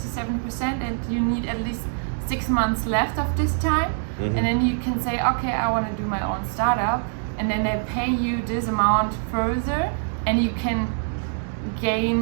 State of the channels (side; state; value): left; silent; digital silence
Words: and you need at least 6 months left of this time. Mhm. And then you can say, okay, I want to do my own startup, and then they pay you this amount further, and you can